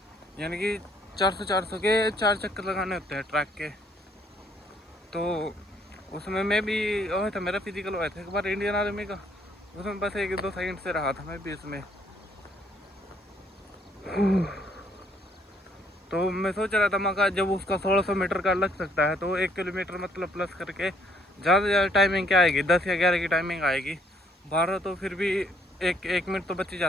यानी कि 400 के 4 चक्कर लगाने होते हैं ट्रैक के। तो उसमें मैं भी हुआ था, मेरा फिजिकल हुआ था एक बार इंडियन आर्मी का, उसमें बस 1-2 सेकंड से रहा था मैं भी इसमें। तो मैं सोच रहा था मगर जब उसका 1600 मीटर का लग सकता है, तो 1 किलोमीटर मतलब प्लस करके ज़्यादा से ज़्यादा टाइमिंग क्या आएगी, 10 या 11 की टाइमिंग आएगी। 12 तो फिर भी एक मिनट तो बच ही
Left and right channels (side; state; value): both; normal; correlation 0.67